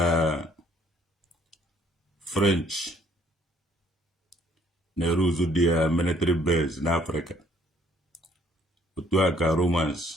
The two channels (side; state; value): both; normal; correlation 0.63